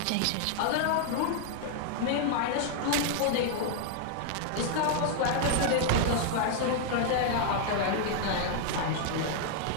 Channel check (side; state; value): both; different; correlation 0.00